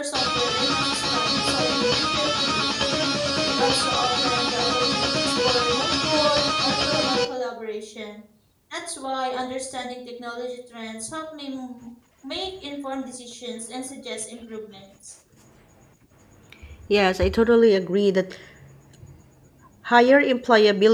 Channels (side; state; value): both; identical; correlation 1.00